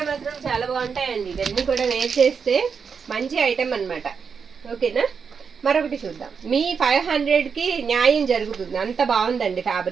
మాత్రం చాలా బాగుంటాయండి. ఇవన్నీ కూడా వేర్ చేస్తే మంచి ఐటమ్ అనమాట. ఓకేనా, మరొకటి చూద్దాం. మీ 500కి న్యాయం జరుగుతుంది. అంత బాగుందండి.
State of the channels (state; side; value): quieter; left; 6.1 dB